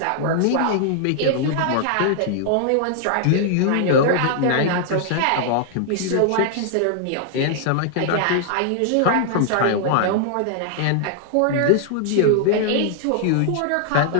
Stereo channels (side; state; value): both; different; correlation -0.01